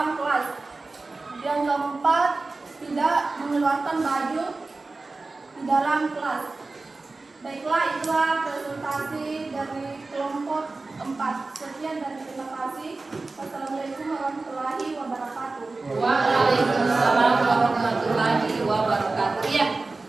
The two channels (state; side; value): quieter; left; 3.5 dB